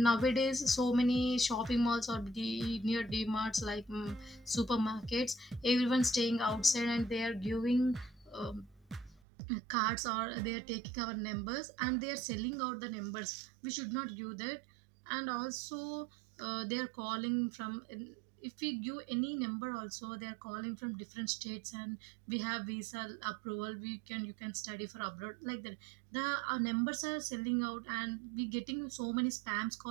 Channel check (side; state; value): left; drops out; at 9.2 s